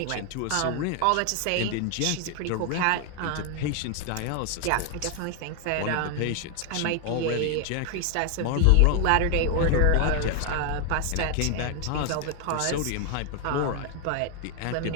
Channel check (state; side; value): different; both; correlation 0.00